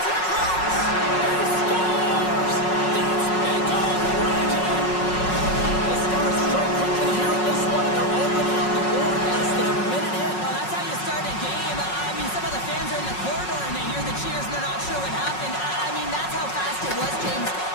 it across. He scores! That's big goal Reginald. The Stars strike quickly here in this one, and they're already on the board less than a minute in. Well, that's how you start a game. I mean, some of the fans are in the corridor and they hear the cheers and they're not sure what happened. I mean, that's how fast it was, James.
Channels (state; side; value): late; right; 5.4 ms